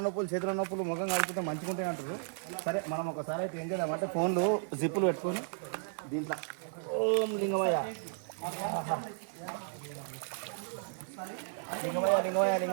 నొప్పులు, చేతుల నొప్పులు, ముఖం కలుపుకుంటే మంచిగా ఉంటాయి అంటారు. సరే మనం ఒకసారి అయితే ఏం చేద్దామంటే ఫోన్లు జిప్పులు పెట్టుకొని దీంట్లో ఓం లింగమయ్య లింగమయ్య లింగమయ్య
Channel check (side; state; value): left; silent; digital silence